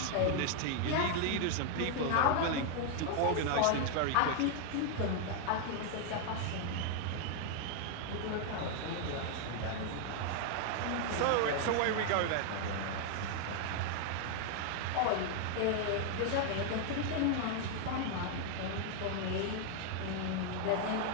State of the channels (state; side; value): different; both; correlation 0.00